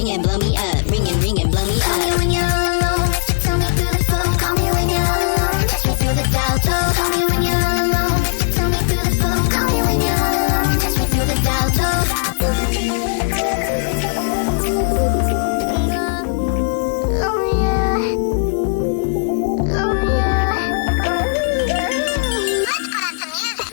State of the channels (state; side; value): silent; right; digital silence